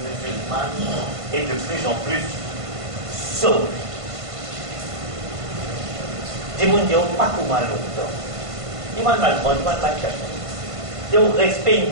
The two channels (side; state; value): left; late; 1.5 ms